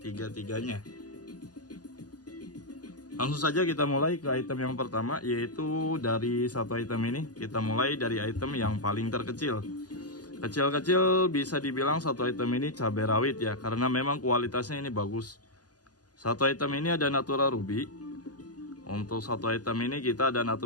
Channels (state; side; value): late; right; 0.69 ms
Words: Langsung saja kita mulai ke item yang pertama, yaitu dari satu item ini. Kita mulai dari item yang paling terkecil. Kecil-kecil bisa dibilang satu item ini cabai rawit ya, karena memang kualitasnya ini bagus. Satu item ini ada natural ruby. Untuk satu item ini kita ada